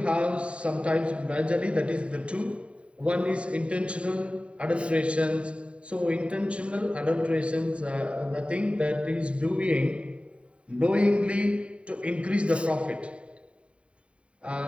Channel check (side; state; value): left; late; 0.060 ms